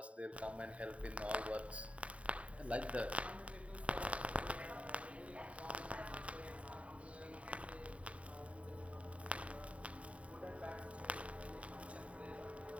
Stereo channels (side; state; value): left; late; 0.065 ms